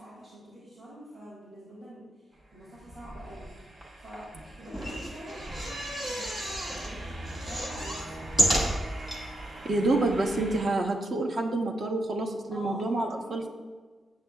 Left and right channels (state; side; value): normal; both; correlation 0.82